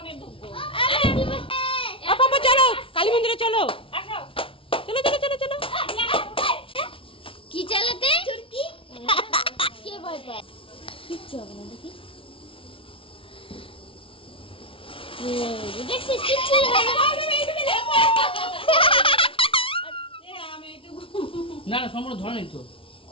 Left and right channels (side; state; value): right; late; 0.26 ms